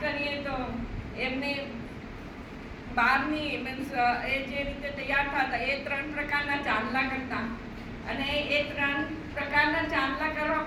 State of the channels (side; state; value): both; identical; correlation 1.00